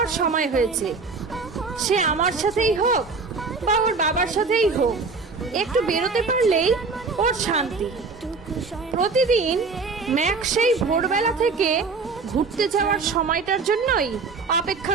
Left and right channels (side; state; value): left; quieter; 4.4 dB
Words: সময় হয়েছে। সে আমার সাথেই হোক বা ওর বাবার সাথেই হোক, একটু বেরোতে পারলেই ওর শান্তি। প্রতিদিন ম্যাক সেই ভোরবেলা থেকে ঘুরতে যাওয়ার সময়টার জন্যই